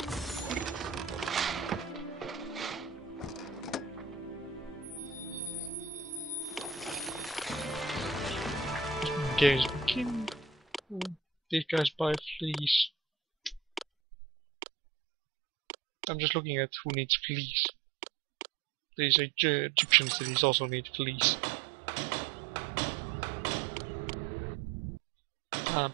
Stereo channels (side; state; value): left; drops out; at 13.9 s